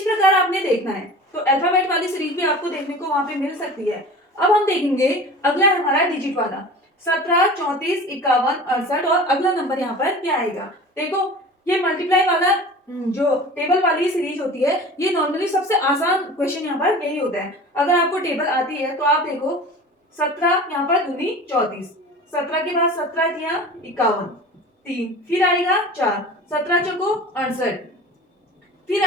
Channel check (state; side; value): normal; both; correlation 0.38